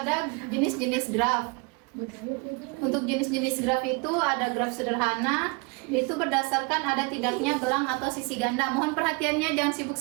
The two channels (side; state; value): left; quieter; 30.1 dB